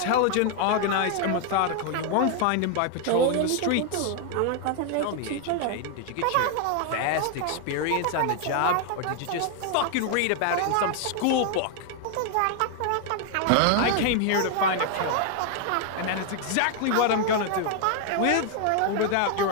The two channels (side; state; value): both; different; correlation 0.00